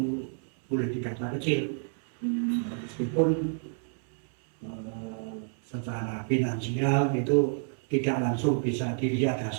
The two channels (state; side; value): silent; left; 58 dB below the other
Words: boleh dikata kecil, meskipun secara finansial itu tidak langsung bisa dilihat